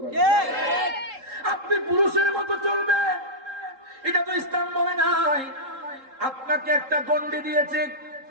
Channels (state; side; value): late; left; 3.8 ms